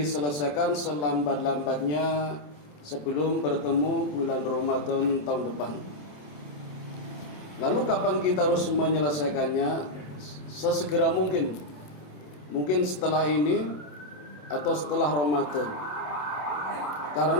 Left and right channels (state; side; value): late; right; 27 ms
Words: selambat-lambatnya sebelum bertemu bulan Ramadan tahun depan. Lalu kapan kita harus menyelesaikannya? Sesegera mungkin. Mungkin setelah ini atau setelah Ramadan.